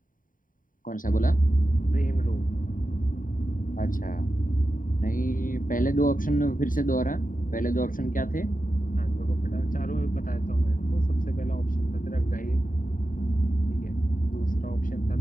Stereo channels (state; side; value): late; right; 0.39 ms